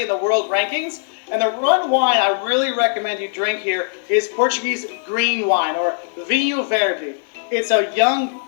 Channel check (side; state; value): right; silent; 66 dB below the other